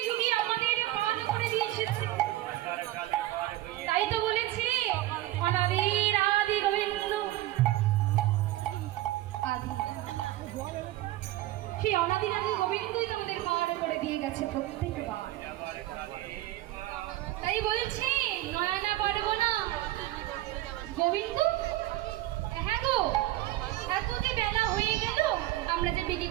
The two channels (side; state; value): left; quieter; 15.9 dB